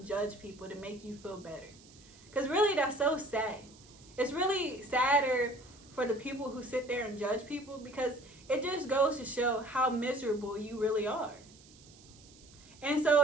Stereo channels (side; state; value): right; noise; hiss, 24 dB below the sound